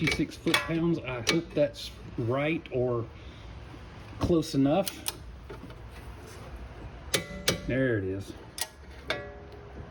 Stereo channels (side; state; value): both; identical; correlation 1.00